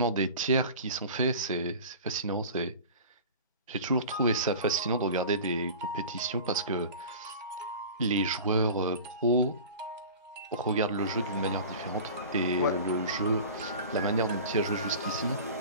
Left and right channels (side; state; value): both; inverted; correlation -0.37